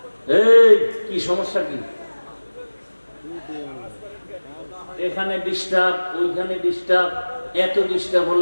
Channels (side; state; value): both; inverted; correlation -1.00